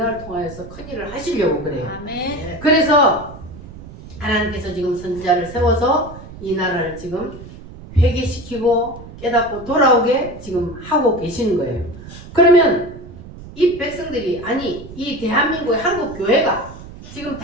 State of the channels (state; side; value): noise; right; rumble, 15 dB below the sound